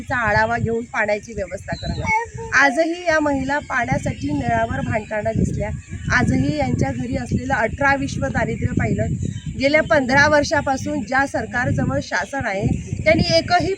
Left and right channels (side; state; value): both; identical; correlation 1.00